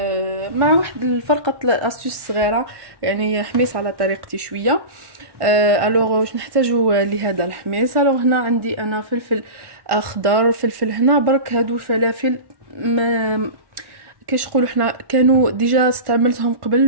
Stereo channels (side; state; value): left; late; 1.1 ms